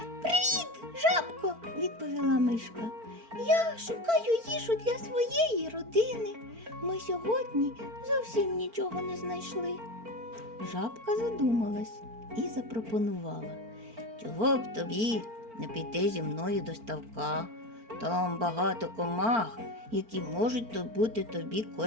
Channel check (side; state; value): left; late; 4.4 ms